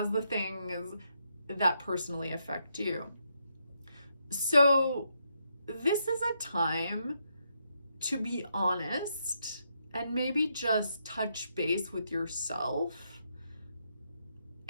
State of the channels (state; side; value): inverted; both; correlation -0.79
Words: the things that personally affect you. So this is a time to be honest and maybe just touch base with yourself